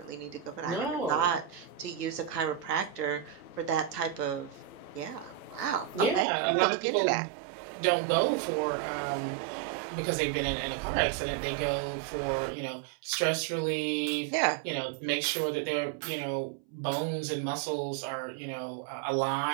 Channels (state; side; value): drops out; left; at 6.2 s